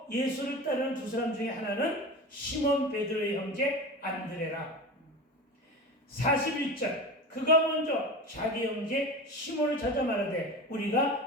예수를 따르는 두 사람 중에 하나는 시몬 베드로의 형제 안드레라. 41절 그가 먼저 자기 형제 시몬을 찾아 말하되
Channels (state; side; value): normal; both; correlation 0.29